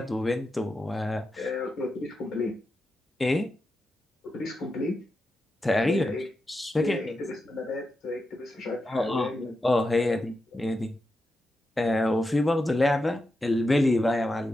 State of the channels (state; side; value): normal; both; correlation 0.88